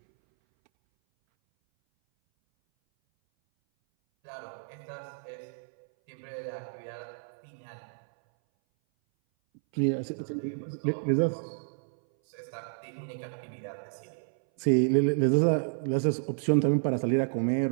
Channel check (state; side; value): silent; left; 58 dB below the other